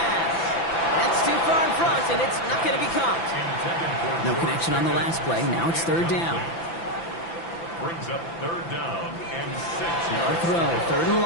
That's too far in front, and it's not going to be caught. No connection on the last play. Now it's 3rd down. Brings up 3rd down and 6. No throw, 3rd and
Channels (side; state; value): right; late; 5.9 ms